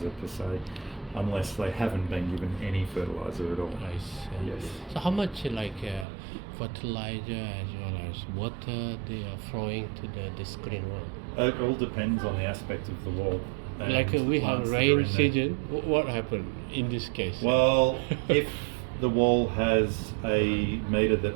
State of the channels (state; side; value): drops out; left; at 6.1 s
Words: per se, unless they haven't been given any fertiliser at all. I see. Yes. So how much fertilizer as well as water they are throwing to this green wall? It all depends on the aspect of the wall. Like we have rain season, what happened in this case? Well, if the wall has a meter that